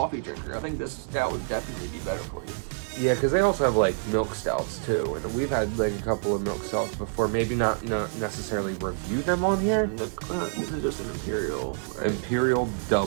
drinker, I think this stout would definitely be better for you. Yeah, because they also have like milk stouts too, and we've had like a couple of milk stouts before. Maybe not necessarily review them on here. This is just an imperial, right? Imperial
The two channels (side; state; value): left; silent; digital silence